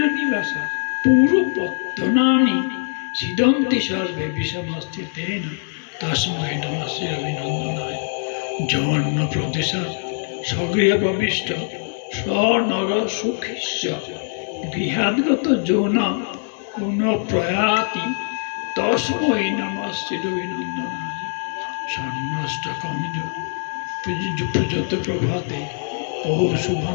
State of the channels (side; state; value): right; silent; 62 dB below the other